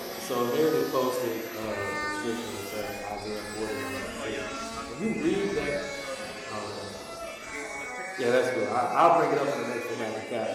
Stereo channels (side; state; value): both; identical; correlation 1.00